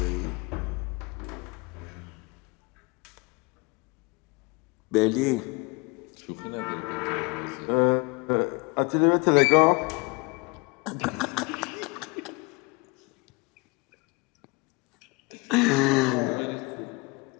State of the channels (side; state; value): right; quieter; 28.3 dB